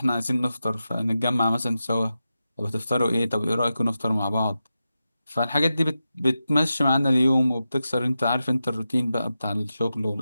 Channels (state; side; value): inverted; both; correlation -0.91